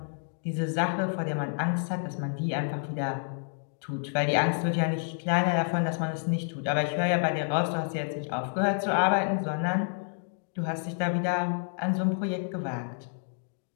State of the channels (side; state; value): right; silent; digital silence